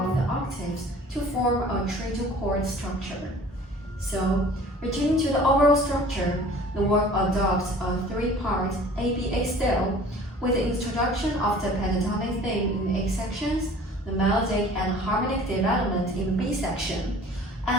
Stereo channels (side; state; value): both; normal; correlation 0.47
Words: the octaves to form a trio chord structure. So, returning to the overall structure, the work adopts a three-part ABA style with the introduction of the pentatonic theme in A sections, the melodic and harmonic development in the B section,